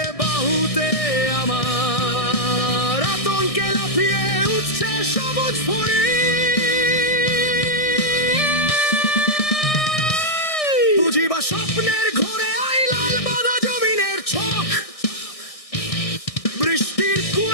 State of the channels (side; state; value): right; late; 1.6 ms